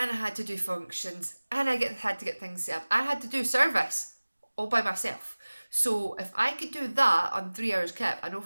I had to do functions, and had to get things set up. I had to do service all by myself. So if I could do that on 3 hours kip, I know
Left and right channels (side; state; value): both; inverted; correlation -1.00